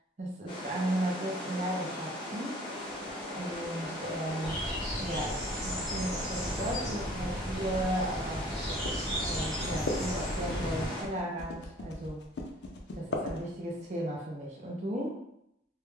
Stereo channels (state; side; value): normal; both; correlation 0.53